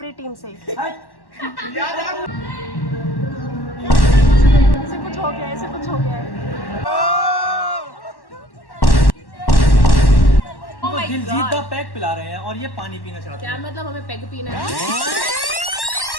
टीम से। इसे कुछ हो गया, इसे कुछ हो गया है। दिलजीत पैक पिला रहे हैं और ये पानी पीना चाहते हैं। क्या मतलब हमें पैग पीना है?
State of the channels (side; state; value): right; late; 1.1 ms